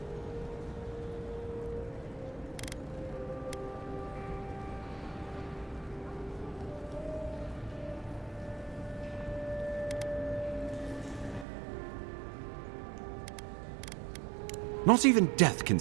Not even death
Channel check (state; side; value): drops out; left; at 11.5 s